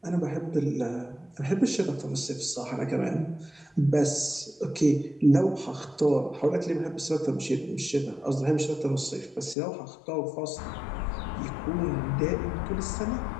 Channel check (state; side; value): drops out; right; at 9.6 s